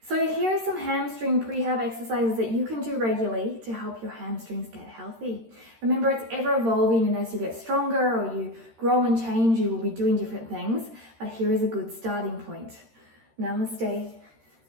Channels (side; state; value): left; late; 13 ms